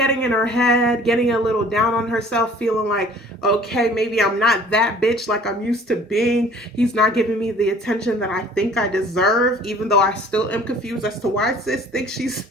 in her head, getting a little down on herself, feeling like, okay, maybe I'm not that bitch like I'm used to being. He's not giving me the attention that I think I deserve, even though I still am confused as to why sis thinks she's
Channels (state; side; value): normal; both; correlation 0.51